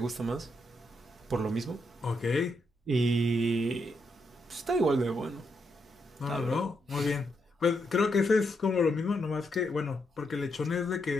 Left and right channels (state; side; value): normal; both; correlation 0.80